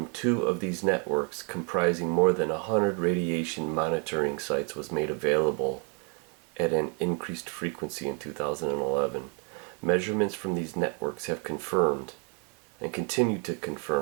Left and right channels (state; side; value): quieter; left; 36.1 dB